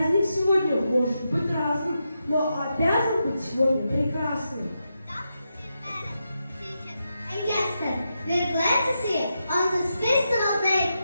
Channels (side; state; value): both; inverted; correlation -0.86